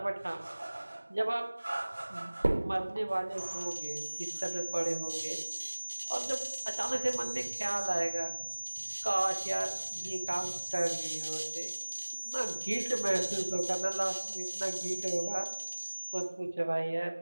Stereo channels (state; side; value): inverted; both; correlation -1.00